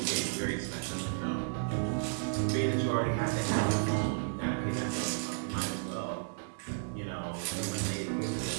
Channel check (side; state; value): left; silent; 56 dB below the other